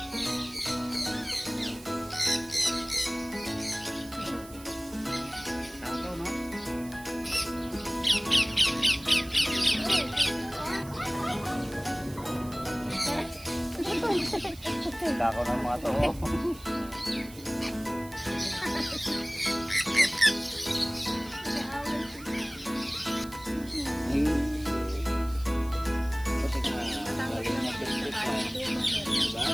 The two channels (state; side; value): noise; right; hiss, 19 dB below the sound